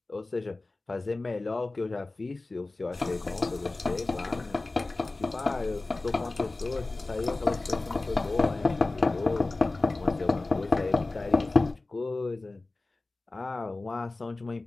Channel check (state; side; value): quieter; right; 3.2 dB